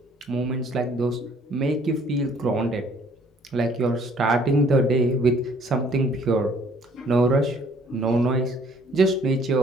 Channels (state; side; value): normal; both; correlation 0.59